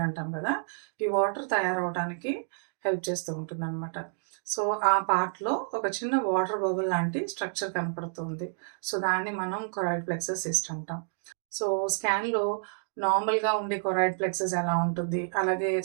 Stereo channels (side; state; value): left; silent; digital silence